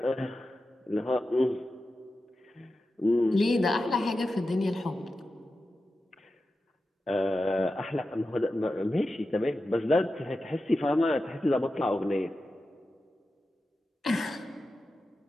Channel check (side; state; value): both; normal; correlation 0.92